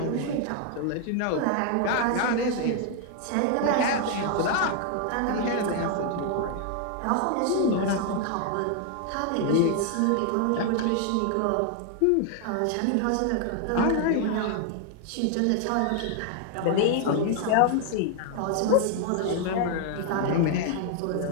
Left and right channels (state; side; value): different; both; correlation 0.00